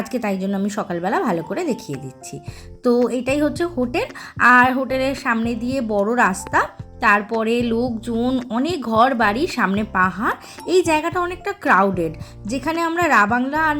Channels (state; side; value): identical; both; correlation 1.00